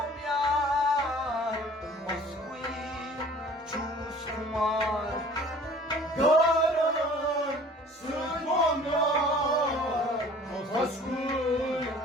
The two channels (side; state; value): both; normal; correlation 0.49